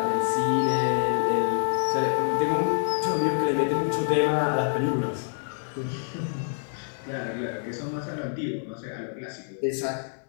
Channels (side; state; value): right; silent; 60 dB below the other